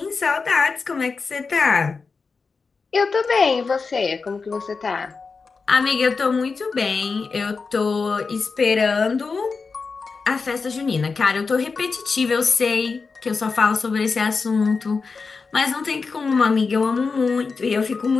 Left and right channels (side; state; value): right; quieter; 4.7 dB